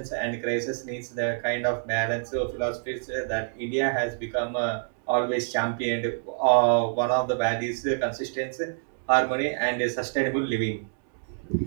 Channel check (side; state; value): left; silent; digital silence